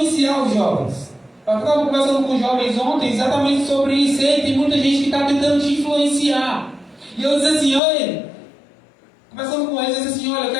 os jovens. Eu estava conversando com os jovens ontem exatamente sobre isso. E tem muita gente que está tentando te influenciar. E eu disse assim, olha, conversando com eles, eu disse assim, olha, eu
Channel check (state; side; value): drops out; right; at 7.8 s